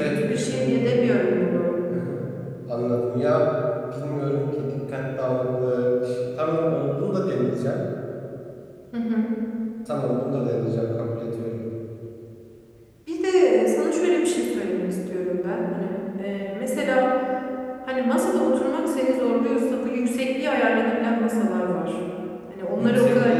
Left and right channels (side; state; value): both; identical; correlation 1.00